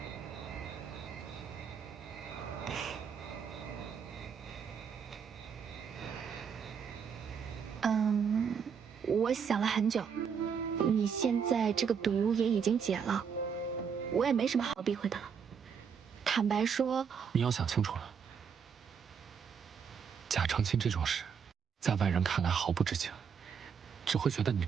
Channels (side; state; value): left; quieter; 6.8 dB